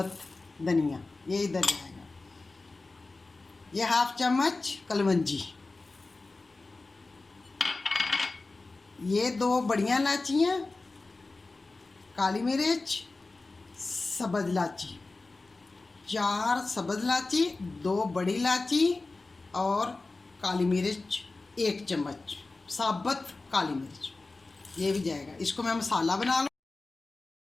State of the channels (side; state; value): right; quieter; 3.4 dB